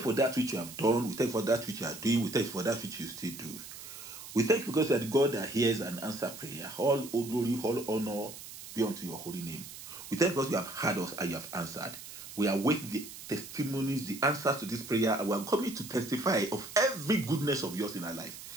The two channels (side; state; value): right; noise; hiss, 13 dB below the sound